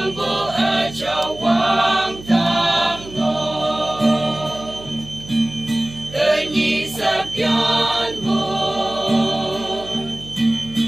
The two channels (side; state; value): right; noise; hum, 16 dB below the sound